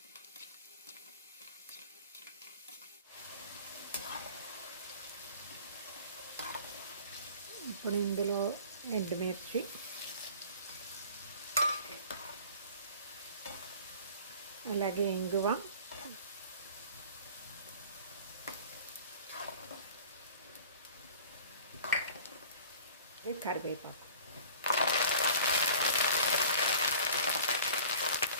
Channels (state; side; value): inverted; both; correlation -0.45